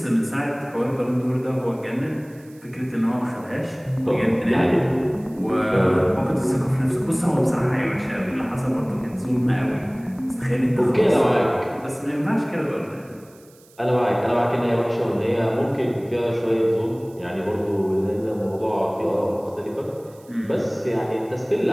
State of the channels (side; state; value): right; noise; hiss, 28 dB below the sound